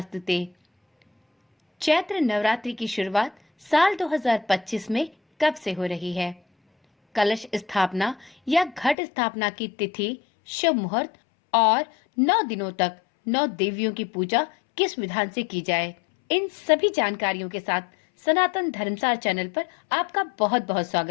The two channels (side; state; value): right; drops out; at 9.0 s